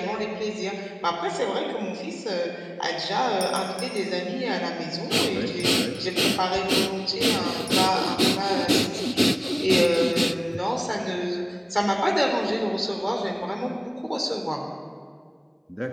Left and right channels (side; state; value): both; identical; correlation 1.00